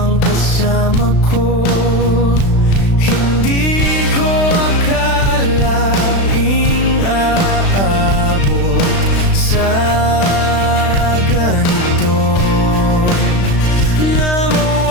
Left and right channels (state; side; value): late; right; 36 ms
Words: kasama ko. Hindi ko akalaing aabot sa ganito, na